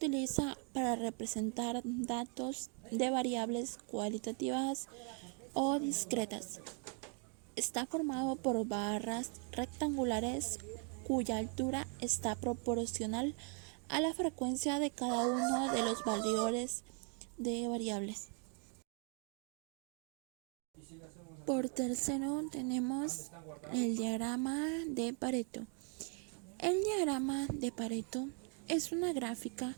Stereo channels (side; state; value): left; quieter; 39.9 dB